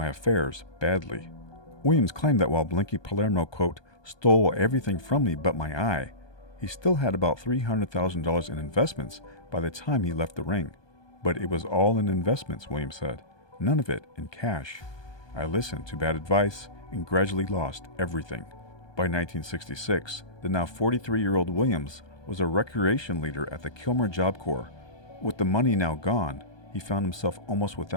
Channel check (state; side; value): late; right; 1.2 ms